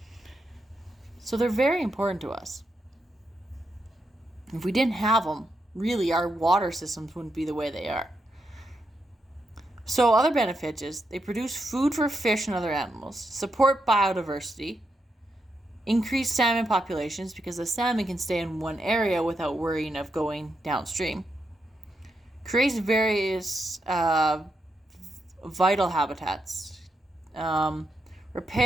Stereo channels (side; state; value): both; normal; correlation 0.83